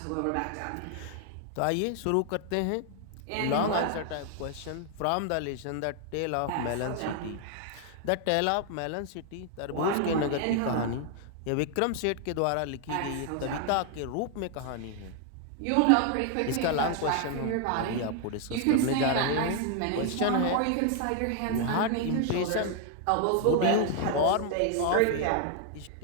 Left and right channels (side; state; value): both; different; correlation 0.00